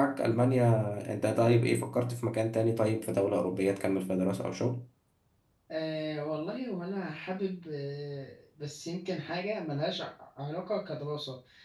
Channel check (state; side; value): identical; both; correlation 1.00